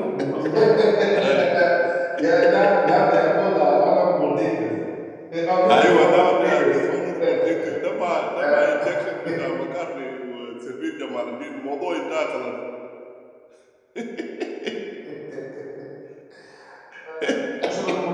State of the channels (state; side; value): identical; both; correlation 1.00